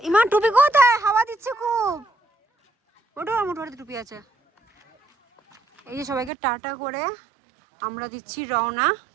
ইমান টুপি কোথায়? হাওয়া দিচ্ছে খুব। ওটা আমার মোটর টুপি আছে। এই যে সবাইকে টাটা করে আমরা দিচ্ছি রওনা।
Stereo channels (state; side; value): drops out; left; at 6.3 s